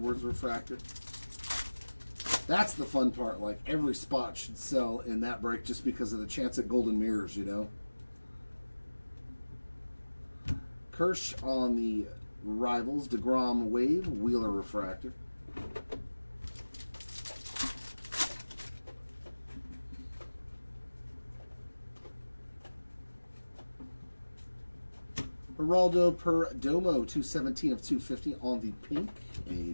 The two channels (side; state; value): both; inverted; correlation -1.00